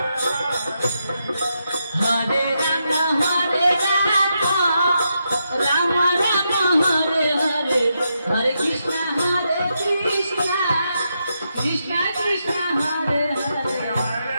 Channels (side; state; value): both; inverted; correlation -0.83